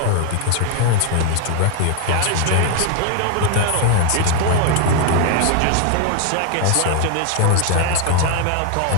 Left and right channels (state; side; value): different; both; correlation 0.00